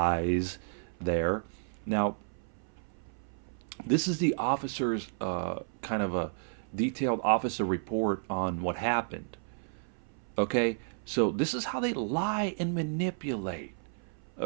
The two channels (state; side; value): silent; left; 56 dB below the other